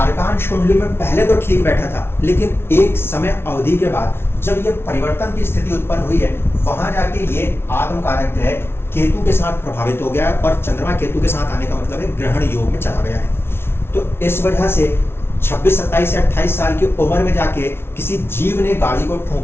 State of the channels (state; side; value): late; right; 0.12 ms